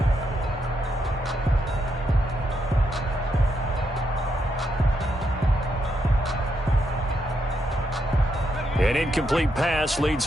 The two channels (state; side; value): normal; both; correlation 0.80